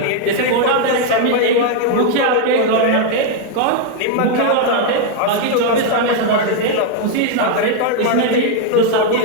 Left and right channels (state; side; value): different; both; correlation 0.01